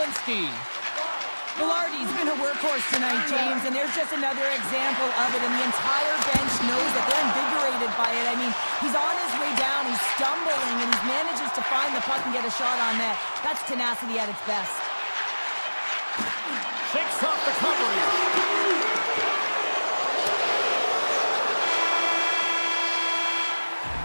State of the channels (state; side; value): inverted; both; correlation -1.00